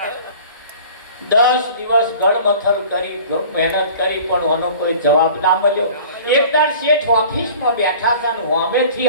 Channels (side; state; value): both; inverted; correlation -0.45